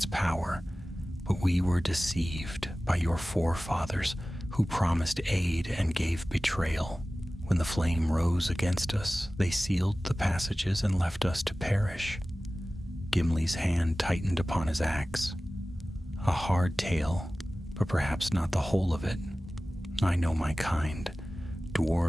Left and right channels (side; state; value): both; normal; correlation 0.97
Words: power, but we were deceived by your forefathers who promised aid and gave betrayal. When the flame rose against us, they sealed the passages and left us to perish." Gimli's hand tightened upon his axe. "A hard tale, but perhaps not the whole of it. I know my kind.